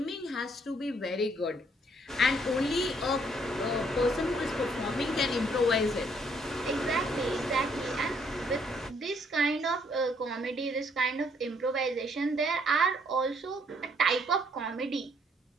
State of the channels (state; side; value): normal; both; correlation 0.68